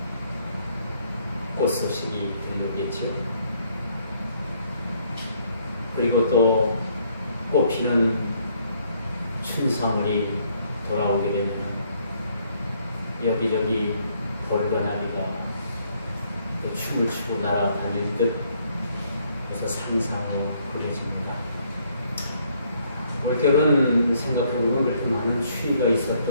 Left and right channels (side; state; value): both; inverted; correlation -0.68